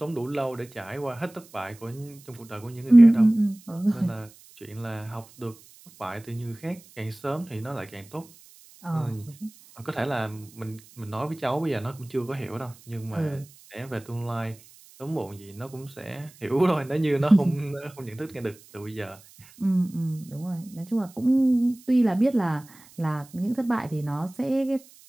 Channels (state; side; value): noise; right; hiss, 24 dB below the sound